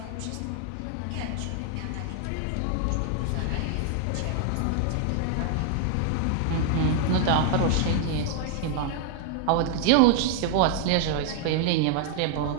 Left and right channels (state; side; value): different; both; correlation 0.00